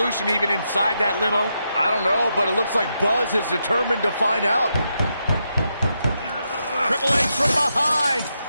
even inside that limo? I don't know, but it looks like Buzz is determined to find out. Triple H from behind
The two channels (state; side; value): inverted; both; correlation -0.83